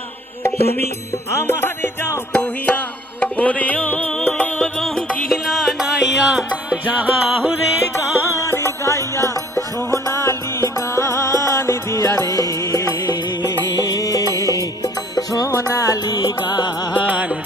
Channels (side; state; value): both; normal; correlation 0.55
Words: তুমি আমারে যাও কহিয়া ওরে ও রঙ্গিলা নাইয়া যাহুরে গান গাইয়া সোনালি গান দিয়া রে সোনালি গান